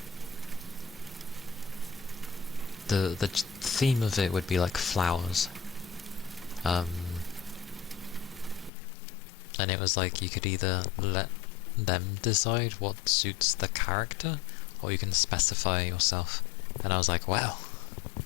the theme of it would be like flowers. And it was like you could either let them decide what suits the character, or you can specify yourself. And I was like, wow,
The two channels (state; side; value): drops out; right; at 8.7 s